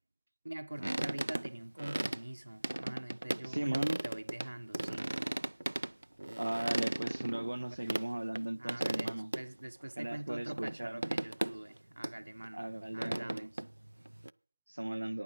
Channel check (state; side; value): inverted; both; correlation -1.00